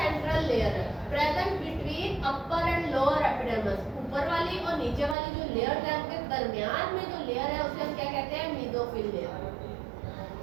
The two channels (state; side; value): drops out; left; at 5.2 s